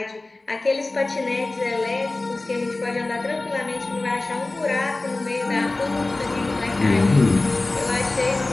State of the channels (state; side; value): quieter; right; 3.1 dB